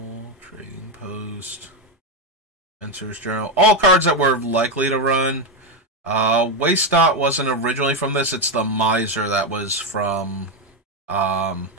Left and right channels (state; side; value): normal; both; correlation 0.08